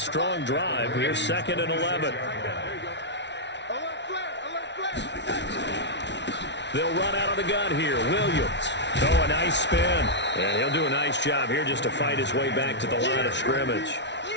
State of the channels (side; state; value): right; late; 0.51 ms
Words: drive. Here's 2nd and 11. They'll run out of the gun here. Williams. Oh, a nice spin. And he'll do a nice job here just to fight his way back to the line of scrimmage.